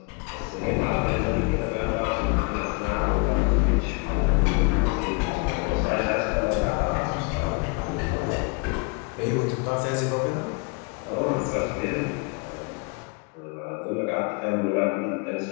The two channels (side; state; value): right; quieter; 32.6 dB